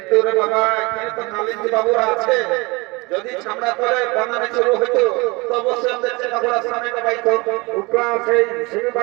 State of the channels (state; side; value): quieter; left; 25.5 dB